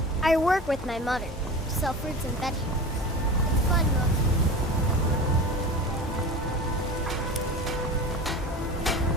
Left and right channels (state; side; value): normal; both; correlation 0.33